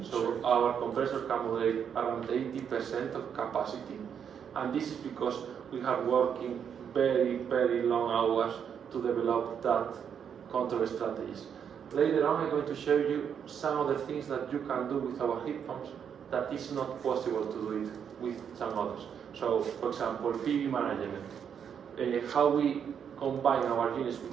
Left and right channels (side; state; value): left; quieter; 7.8 dB